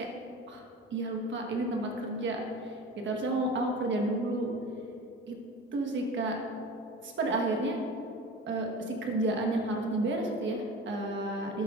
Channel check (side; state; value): both; normal; correlation 0.35